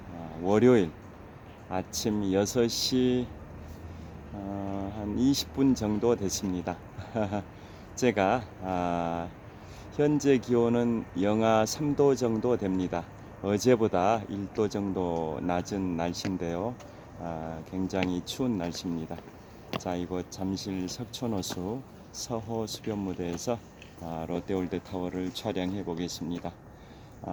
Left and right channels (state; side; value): identical; both; correlation 1.00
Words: 월요일 아침 6시 한 20분 정도 됐습니다. 제가 현재 기온은 영하 3도 정도 됩니다. 어제보다 1도 정도 낮은 날씨인데요. 굉장히 추운 날씨입니다. 자, 이곳 잠실 석촌호수 서호 수변무대에서 롯데월드타워를 촬영해 보겠습니다.